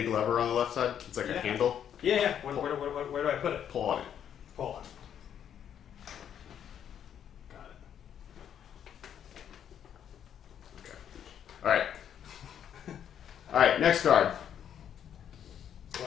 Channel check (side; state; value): right; quieter; 9.2 dB